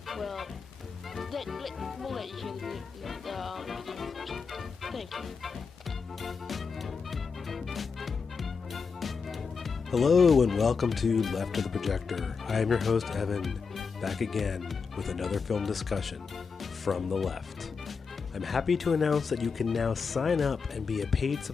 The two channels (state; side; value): quieter; right; 5.3 dB